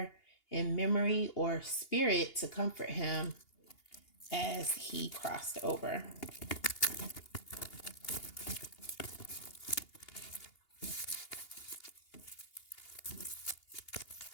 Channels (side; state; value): right; late; 2.8 ms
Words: in memory or spirit to comfort him as he crossed over?